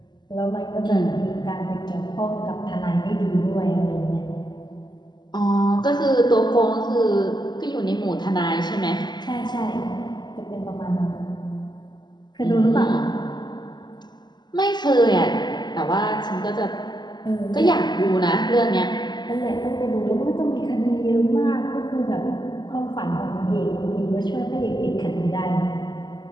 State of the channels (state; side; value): late; right; 0.21 ms